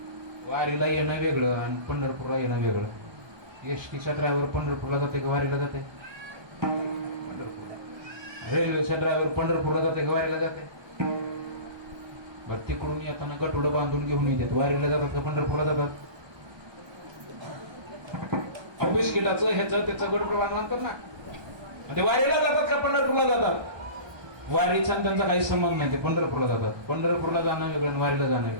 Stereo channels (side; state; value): left; late; 1.3 ms